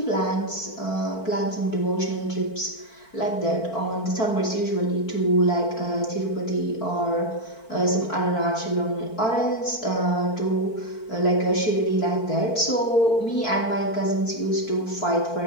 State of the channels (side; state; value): right; late; 4.5 ms